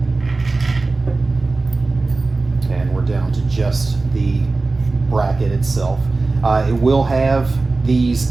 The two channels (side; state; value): left; quieter; 3.5 dB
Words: And we're down to just the bracket itself. It will have these